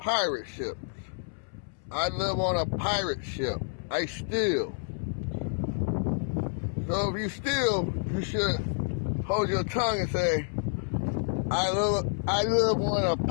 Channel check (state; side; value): silent; right; 59 dB below the other